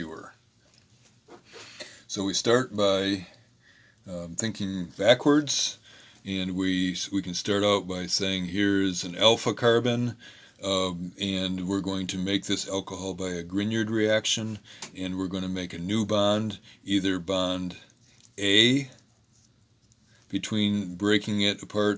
So we start by thinking backwards, and we can start out by saying here's an alpha carbon, and we're going to make this alcohol by a Grignard reaction, and we're going to make a new bond, either bond A, between breaking it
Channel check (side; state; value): both; identical; correlation 1.00